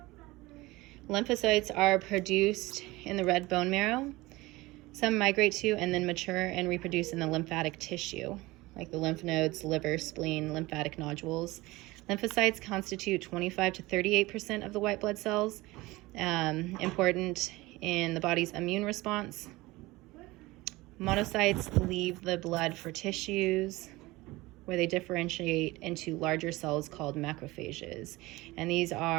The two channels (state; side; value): quieter; left; 20.5 dB